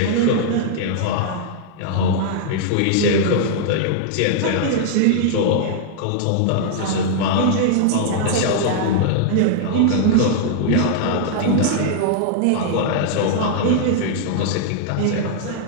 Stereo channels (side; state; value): both; different; correlation -0.01